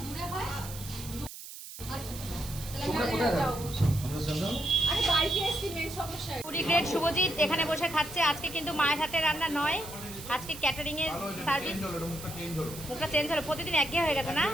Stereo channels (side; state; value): right; noise; hiss, 12 dB below the sound